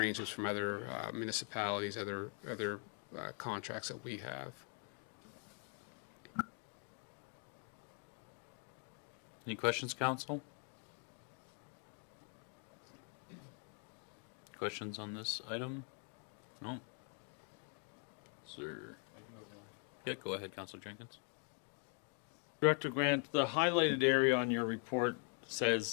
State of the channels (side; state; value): right; quieter; 36.8 dB